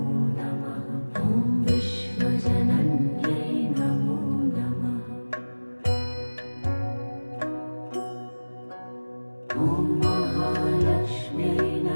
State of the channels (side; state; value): both; inverted; correlation -1.00